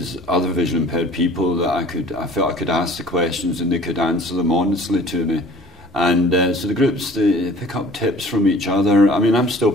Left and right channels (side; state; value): both; normal; correlation 0.49